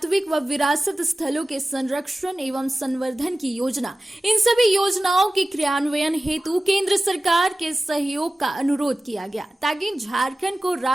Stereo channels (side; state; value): both; normal; correlation 0.96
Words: व विरासत स्थलों के संरक्षण एवं संवर्धन की योजना। इन सभी योजनाओं के क्रियान्वयन हेतु केंद्र सरकार के सहयोग का अनुरोध किया गया, ताकि झारखंड को